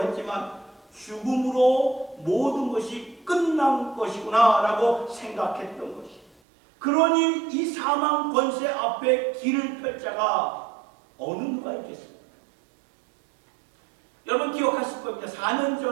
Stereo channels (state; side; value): drops out; left; at 6.3 s